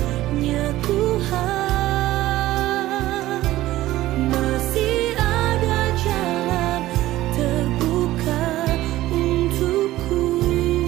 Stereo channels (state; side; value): quieter; left; 15.9 dB